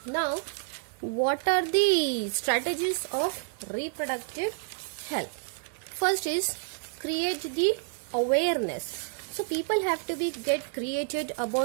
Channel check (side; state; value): left; silent; digital silence